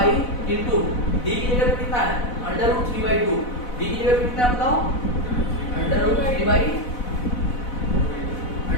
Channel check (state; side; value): late; right; 4.0 ms